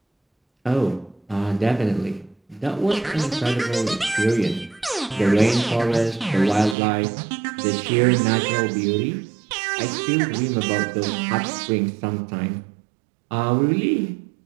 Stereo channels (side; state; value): left; drops out; at 6.8 s